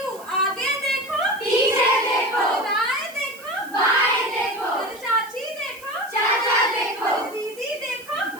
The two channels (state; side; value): noise; right; hiss, 20 dB below the sound